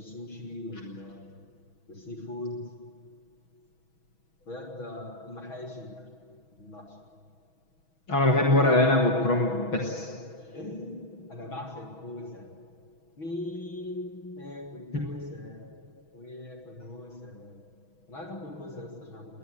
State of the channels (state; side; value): late; right; 6.2 ms